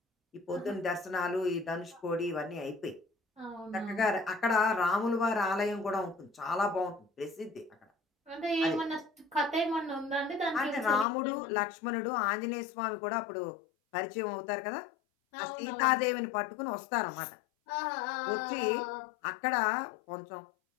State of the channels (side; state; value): right; drops out; at 11.1 s